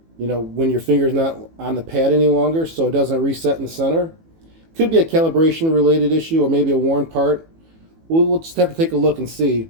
when your finger's not on the pad any longer, so it doesn't reset in the center. Could be a calibration related issue or maybe a worn part. We'll just have to take a look and see.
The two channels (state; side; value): late; left; 18 ms